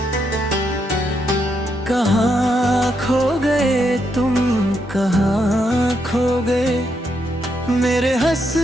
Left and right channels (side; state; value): both; normal; correlation 0.79